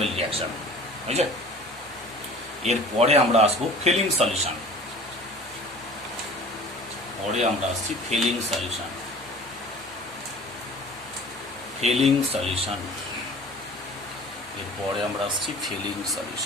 রিয়াকশন, বুঝছে। এরপরে আমরা আসবো ফিলিং সলিউশন, পরে আমরা আসছি ফিলিং সলিউশন। এরপরে আমরা আসছি feeling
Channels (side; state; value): both; normal; correlation 0.44